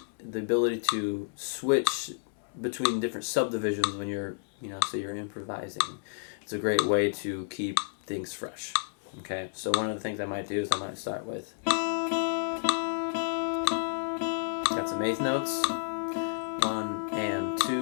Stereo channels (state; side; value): silent; right; digital silence